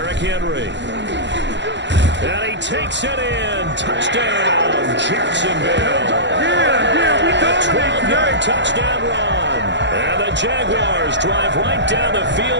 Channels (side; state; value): left; late; 0.52 ms